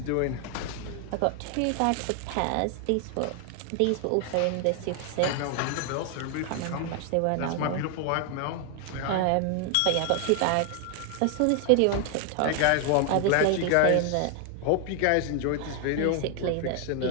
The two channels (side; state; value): both; different; correlation 0.00